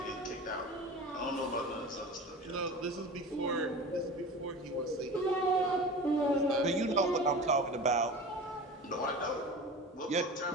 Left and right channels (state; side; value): normal; both; correlation 0.34